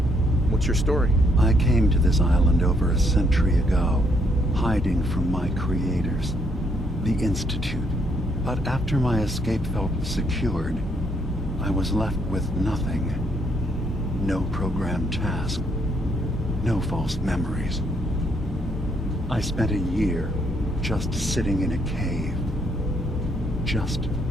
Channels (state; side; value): normal; both; correlation 0.72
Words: What's your story? I came to this island over a century ago, hiding from my creators, the Institute. But after my escape felt secured, I was left with nothing. No programmed task. No false memories. I spent a year just sitting in a cave. Just